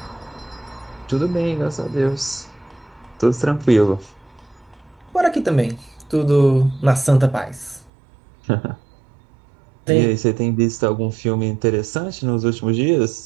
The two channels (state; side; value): drops out; left; at 7.9 s